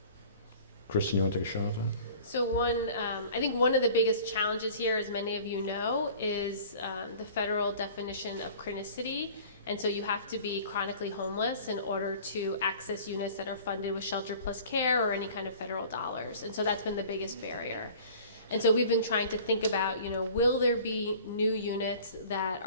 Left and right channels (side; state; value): both; inverted; correlation -0.46